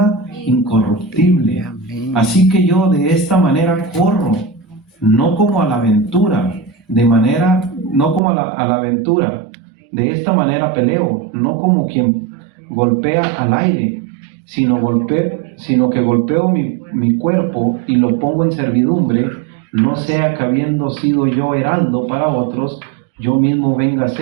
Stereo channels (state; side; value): drops out; left; at 8.2 s